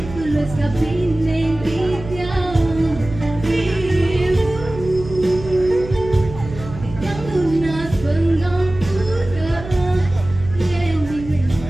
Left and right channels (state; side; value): noise; right; hum, 13 dB below the sound